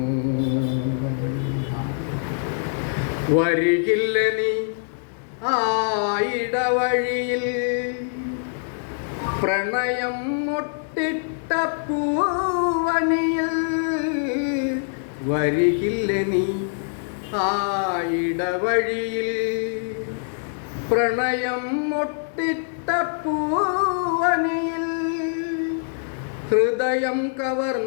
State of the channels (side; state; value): right; silent; digital silence